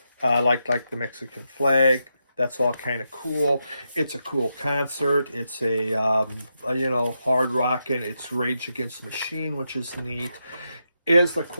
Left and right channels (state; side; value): inverted; both; correlation -0.85